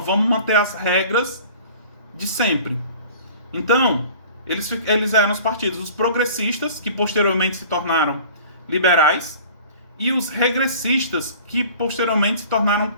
vamos manter as regras de sempre. Então, eles eram os partidos, os progressistas, que posteriormente se tornaram liberais, e os regressistas, que posteriormente se tornaram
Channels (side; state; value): both; inverted; correlation -0.45